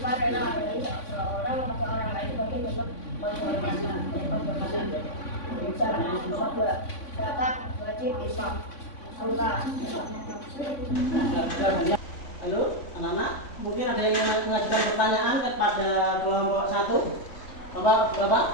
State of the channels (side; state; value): right; late; 3.5 ms